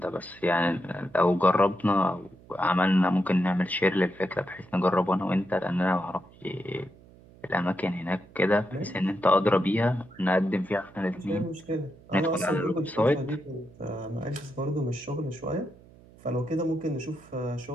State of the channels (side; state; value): right; noise; hum, 24 dB below the sound